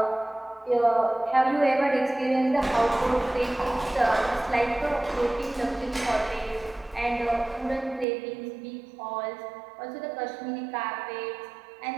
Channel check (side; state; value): left; drops out; at 8.1 s